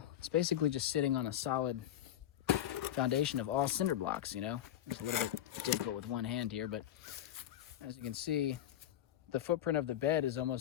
it's basically just sitting on a solid foundation of all cinder blocks, you know? It's a little bit difficult with one hand here, but as you can see, the footprint of the bed is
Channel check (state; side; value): quieter; right; 11.6 dB